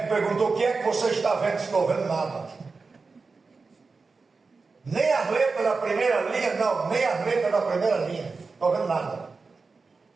perguntou: o que é que você está vendo? Estou vendo nada. Nem as letras da primeira linha, não, nem as letras da primeira linha. Estou vendo nada.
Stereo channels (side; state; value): left; quieter; 4.3 dB